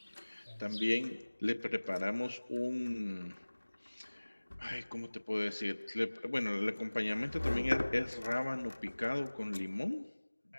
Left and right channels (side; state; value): both; inverted; correlation -1.00